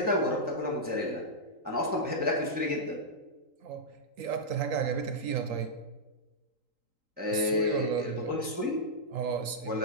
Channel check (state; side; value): late; left; 3.8 ms